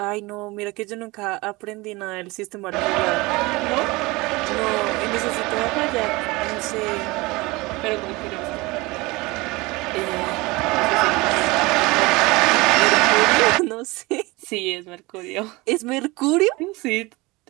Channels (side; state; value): left; quieter; 22.9 dB